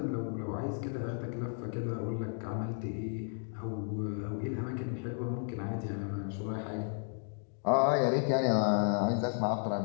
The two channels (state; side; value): silent; right; 55 dB below the other